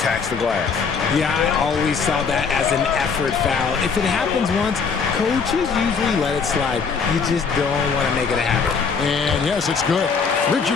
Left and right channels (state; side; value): quieter; right; 5.5 dB